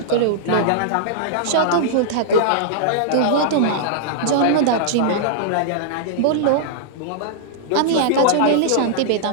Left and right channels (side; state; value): both; different; correlation -0.02